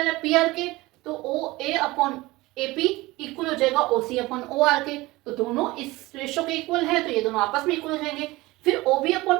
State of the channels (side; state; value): left; quieter; 20.3 dB